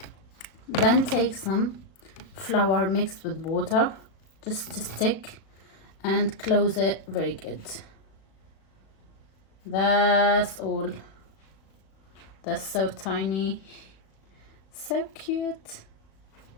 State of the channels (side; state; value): right; late; 36 ms